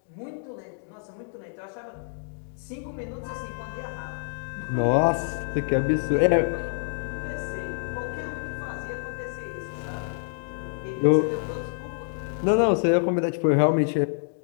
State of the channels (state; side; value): silent; right; digital silence